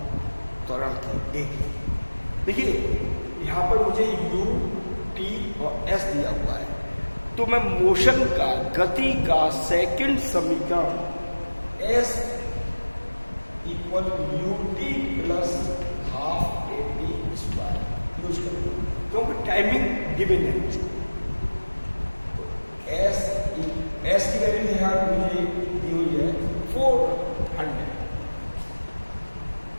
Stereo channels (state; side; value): inverted; both; correlation -1.00